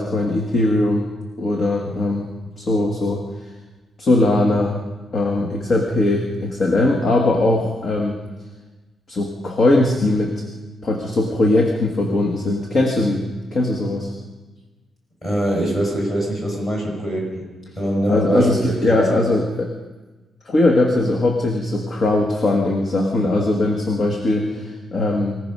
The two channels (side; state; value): both; normal; correlation 0.79